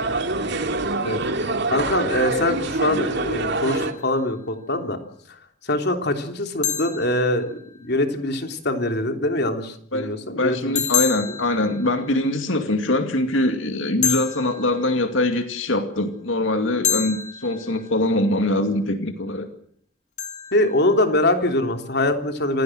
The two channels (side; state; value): both; normal; correlation 0.09